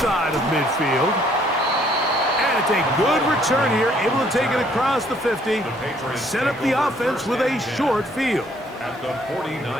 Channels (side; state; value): both; normal; correlation 0.64